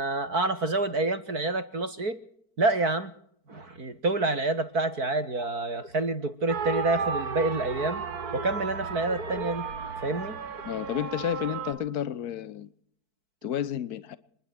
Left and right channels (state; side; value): late; left; 4.5 ms